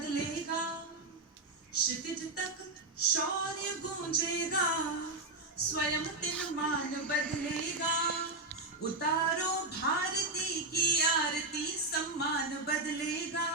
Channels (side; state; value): left; quieter; 3.1 dB